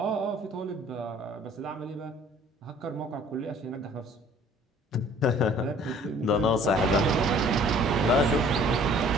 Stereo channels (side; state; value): both; normal; correlation 0.53